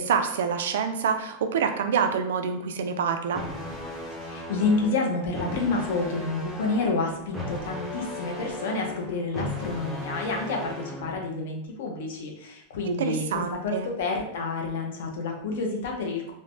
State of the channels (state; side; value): normal; both; correlation -0.13